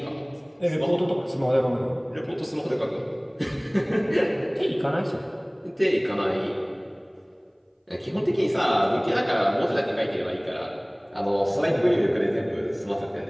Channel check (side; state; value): both; identical; correlation 1.00